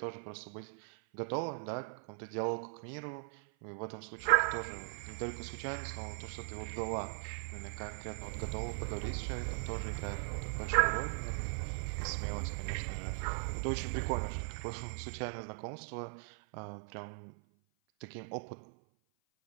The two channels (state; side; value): silent; left; 52 dB below the other